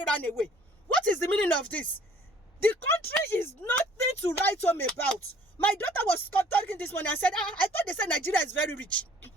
ran away. What is the meaning of this? The country is nothing to write home about. My daughter was talking this morning and said, I thought they said Nigeria is very rich.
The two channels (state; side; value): normal; both; correlation 0.57